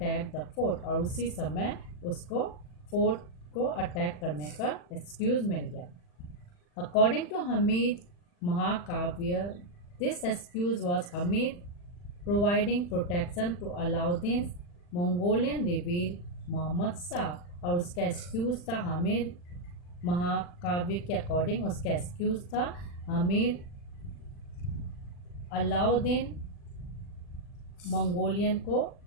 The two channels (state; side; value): late; right; 40 ms